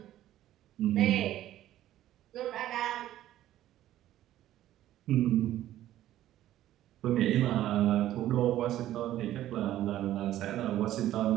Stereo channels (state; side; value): quieter; left; 13.3 dB